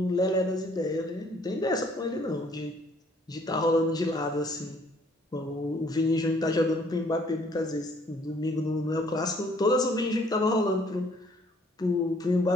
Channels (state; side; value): normal; both; correlation 0.62